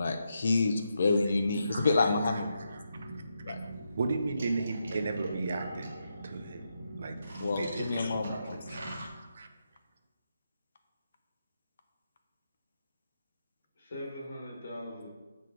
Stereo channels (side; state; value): both; inverted; correlation -0.83